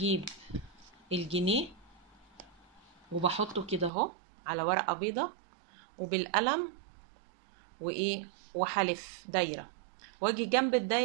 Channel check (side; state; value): left; drops out; at 3.9 s